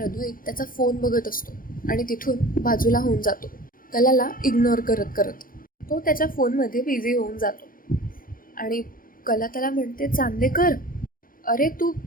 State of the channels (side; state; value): right; late; 0.41 ms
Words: अद्वैत त्याचा फोन बघत असतो आणि तिथून बाजूला होऊन जातो, कलाला इग्नोर करत तो त्याच्या फोनमध्ये बिझी होऊन जातो. आणि कला त्याला म्हणते, चांदेकर, अरे तू